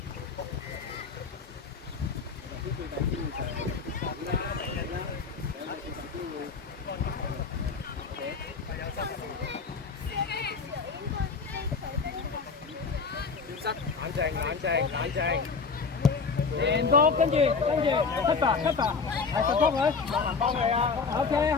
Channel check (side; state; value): right; quieter; 4.9 dB